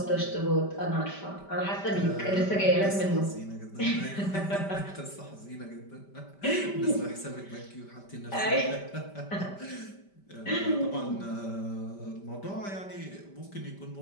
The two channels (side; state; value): right; late; 5.1 ms